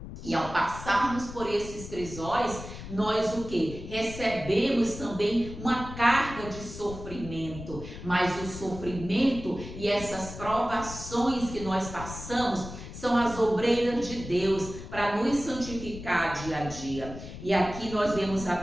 E ao passarmos por esses crisóis, nós o quê? Recebemos também uma carga de sofrimento. Mas o sofrimento e essas provações que nós passamos são as obreiras de Deus para nos santificar dia a dia. E aqui nós vemos a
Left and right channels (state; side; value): noise; left; rumble, 11 dB below the sound